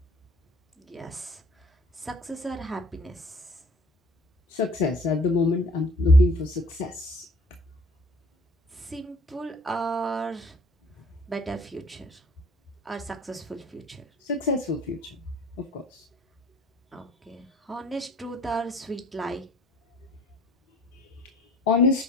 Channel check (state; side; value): normal; both; correlation 0.52